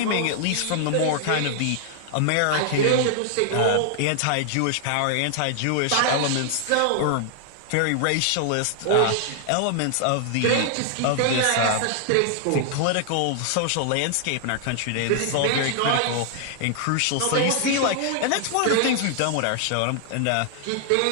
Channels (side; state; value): both; different; correlation 0.00